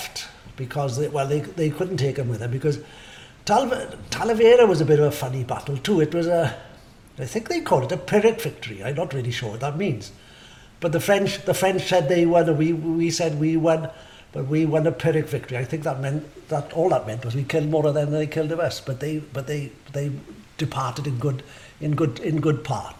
because they couldn't take them with them because Talavera was a bit of a funny battle too. It was I think they called it a Pyrrhic victory. I'm not really sure what that means. But the French said they won, and we said we won, but we won a Pyrrhic victory. I think that meant that all that meant was we killed more of them than they killed of us. But they departed in good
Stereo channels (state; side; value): identical; both; correlation 1.00